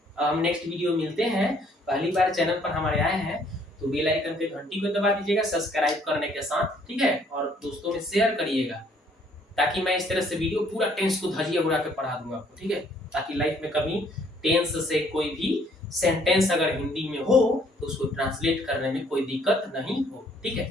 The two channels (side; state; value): both; normal; correlation 0.63